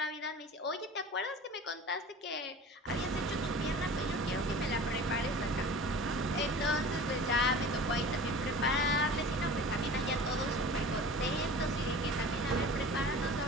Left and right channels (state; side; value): normal; both; correlation 0.39